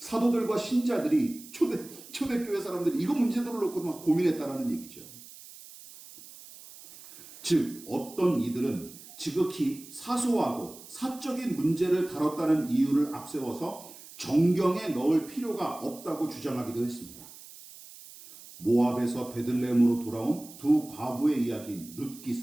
신자들이 초대교회 사람들이 이거 문제들을 놓고 막 고민했다라는 얘기죠. 즉, 어떤 이들은 지극히 사소하고 사적인 문제를 다뤘다는 이유를 앞세워서 정경에 넣을 필요가 없다고 주장하기도 했습니다. 모압에서 베들레헴으로 돌아온 두 과부의 이야기인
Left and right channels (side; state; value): right; noise; hiss, 18 dB below the sound